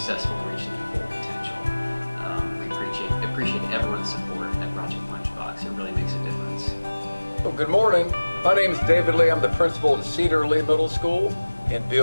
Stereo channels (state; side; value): inverted; both; correlation -1.00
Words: in reaching their full potential. We appreciate everyone's support at Project Lunchbox. It really makes a difference. Well, good morning. My name is David Lee. I'm the principal at Cedar Lee Middle School in